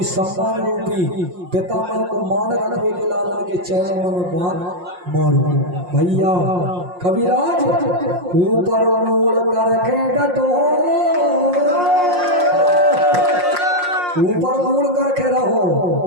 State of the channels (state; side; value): late; left; 5.6 ms